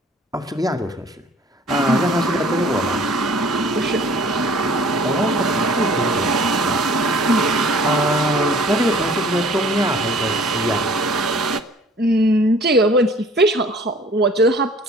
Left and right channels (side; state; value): both; normal; correlation 0.52